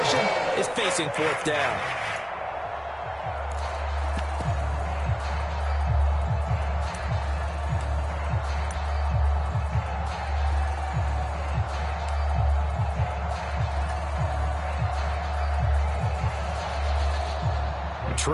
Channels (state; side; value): identical; both; correlation 1.00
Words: is facing 4th down.